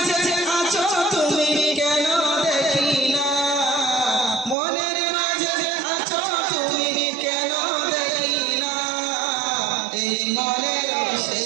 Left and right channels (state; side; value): drops out; left; at 4.5 s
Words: আছো তুমি কেন দেখি না, মনের মাঝে আছো তুমি কেন দেখি না। এই মনের